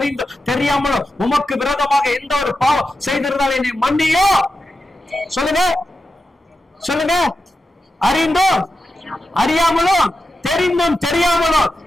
தெரியாமலும் உமக்கு விரோதமாக எந்த ஒரு பாவம் செய்திருந்தாலும் என்னை மன்னியோ. சொல்லுங்க சொல்லுங்க. அறிந்தும் அறியாமலும் தெரிந்தும் தெரியாமலும்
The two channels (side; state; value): both; normal; correlation 0.90